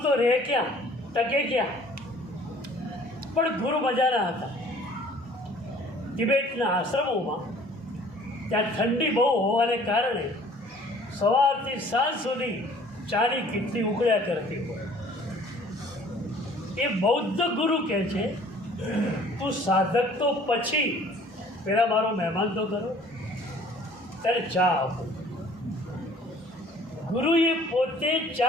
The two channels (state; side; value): normal; both; correlation 0.53